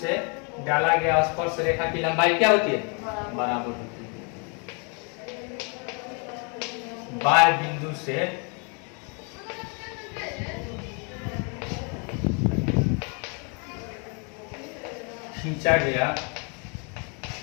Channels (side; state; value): right; quieter; 35.6 dB